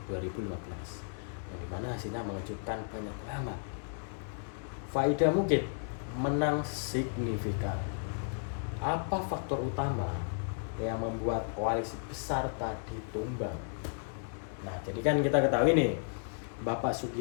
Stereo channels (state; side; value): silent; right; digital silence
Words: 2015 yang dimana hasilnya mengejutkan banyak pengamat. Faida Mukid menang signifikan. Apa faktor utama yang membuat koalisi besar tadi tumbang? Nah, jadi kan kita ketahui nih, Bapak